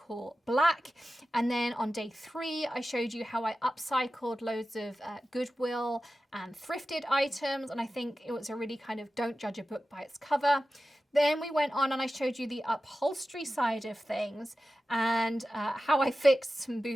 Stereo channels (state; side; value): normal; both; correlation 0.94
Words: black. And then on day three, I showed you how I upcycled loads of Goodwill and thrifted items, and I think it was a really kind of don't judge a book by its cover. Then we went on and I showed you the upholstery side of things and how I fixed some